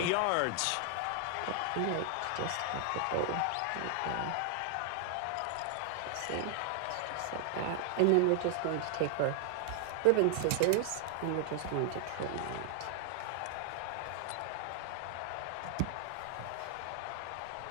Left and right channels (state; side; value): different; both; correlation 0.00